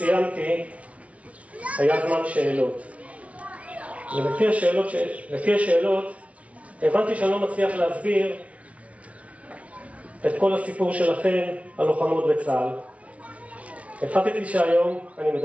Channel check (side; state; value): left; late; 0.065 ms